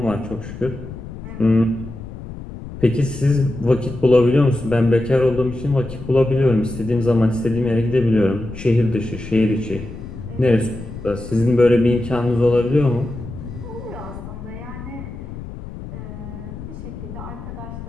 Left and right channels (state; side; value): noise; left; rumble, 11 dB below the sound